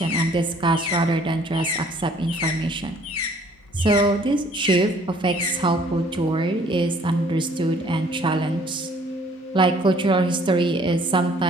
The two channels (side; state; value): both; normal; correlation 0.58